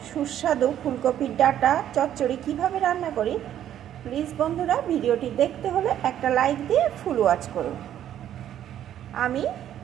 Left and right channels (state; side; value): quieter; left; 11.0 dB